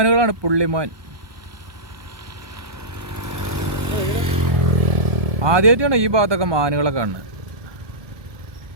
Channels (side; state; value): left; late; 1.2 ms